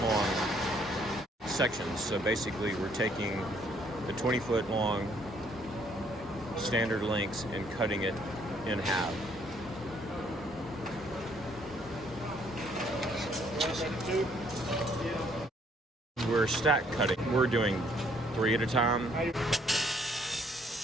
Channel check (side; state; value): both; normal; correlation 0.66